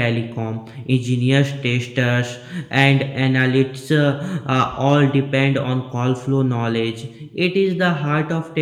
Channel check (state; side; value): identical; both; correlation 1.00